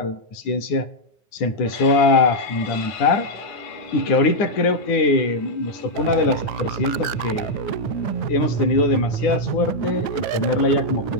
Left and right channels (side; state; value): right; late; 9.7 ms